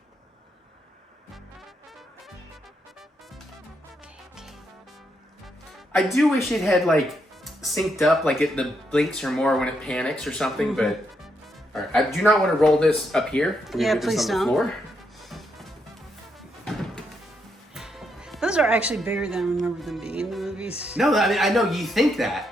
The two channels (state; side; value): normal; both; correlation 0.79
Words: I do wish it had like synced up, like the blinks are more when it panics or something, but all right, I do not want to roll this up here. Yeah, please don't. Floor. Those are actually bigger than I remember them being in the movies. No, I mean, I know you think that,